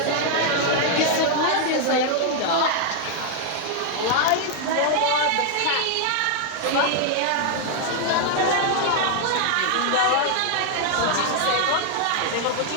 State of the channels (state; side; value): different; both; correlation 0.00